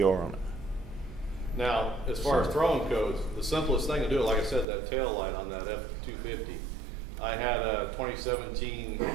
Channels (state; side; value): drops out; left; at 4.7 s